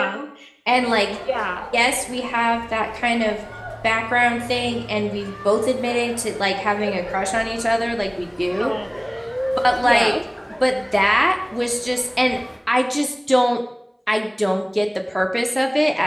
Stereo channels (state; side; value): identical; both; correlation 1.00